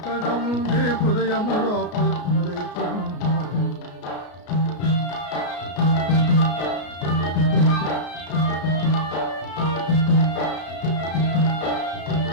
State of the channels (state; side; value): late; right; 33 ms